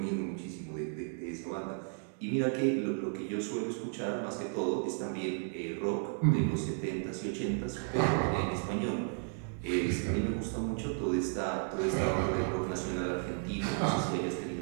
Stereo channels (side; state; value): left; silent; 55 dB below the other